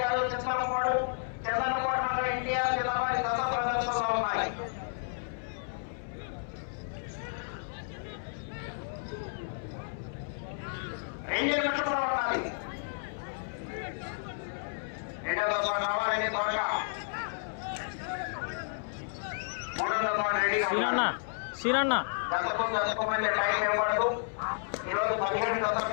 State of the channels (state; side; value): silent; right; 57 dB below the other